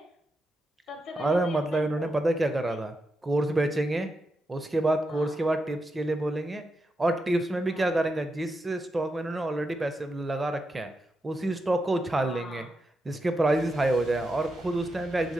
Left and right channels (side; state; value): both; normal; correlation 0.86